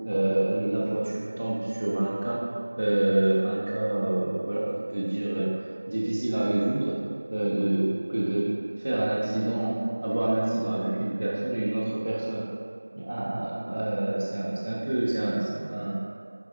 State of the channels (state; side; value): inverted; both; correlation -1.00